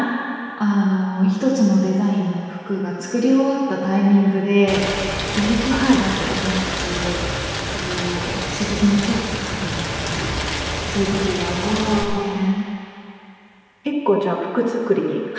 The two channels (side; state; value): both; identical; correlation 1.00